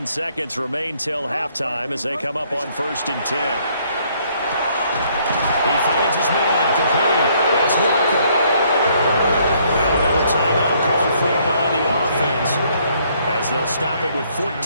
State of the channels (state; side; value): inverted; both; correlation -0.66